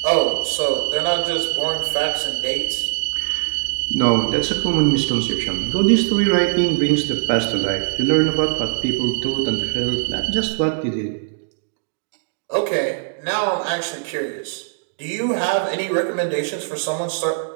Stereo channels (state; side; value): silent; left; digital silence